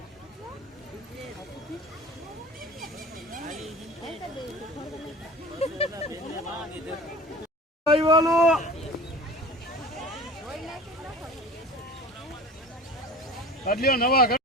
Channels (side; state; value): both; normal; correlation 0.38